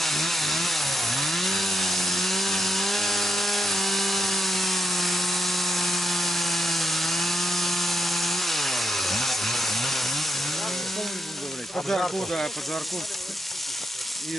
Поджарку, да, поджарку.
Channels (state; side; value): normal; both; correlation 0.83